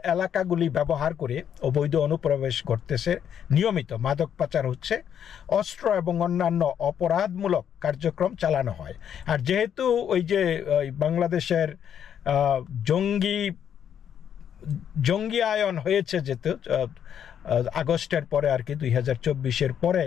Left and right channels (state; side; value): quieter; right; 8.9 dB